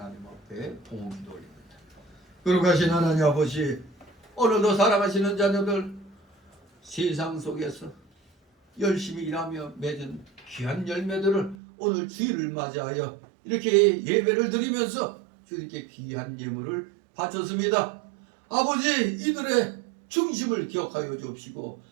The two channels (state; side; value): drops out; left; at 11.6 s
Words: 앞에 봉헌 기도 올립니다. 거룩하신 하나님 아버지, 오늘도 사랑하시는 자녀들 세상 속에서 열심히 일하며 맺은 귀한 열매들을 오늘 주일을 맞이하여 이렇게 예배를 드리면서 주님께 귀한 예물을 바쳤습니다. 아버지, 이들의 중심을 기억하여 주옵시고